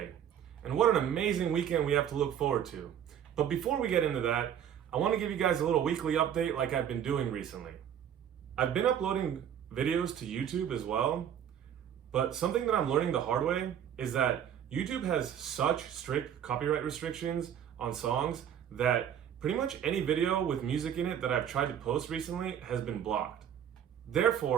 and what an amazing weekend we have to look forward to. But before we get into that, I want to give you guys a little weekly update like I've been doing recently. I've been uploading videos to YouTube as well, but something that I'm learning the hard way is that YouTube has such strict copyright restrictions on songs that pretty much any video with music in it that I've tried to post recently has been blocked.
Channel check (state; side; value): quieter; left; 9.3 dB